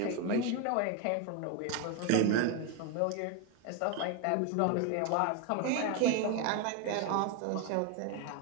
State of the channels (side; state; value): both; different; correlation 0.01